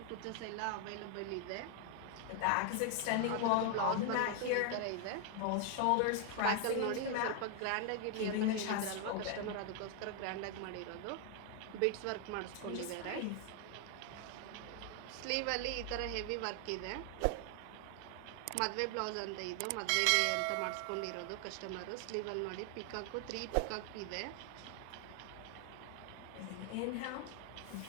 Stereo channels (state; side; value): different; both; correlation 0.00